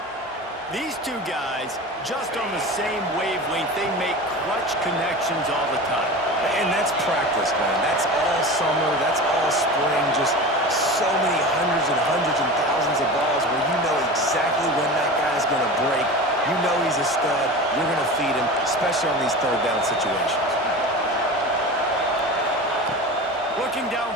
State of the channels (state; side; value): normal; both; correlation 0.31